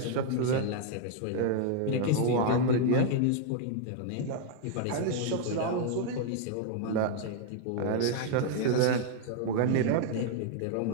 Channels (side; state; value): both; different; correlation 0.00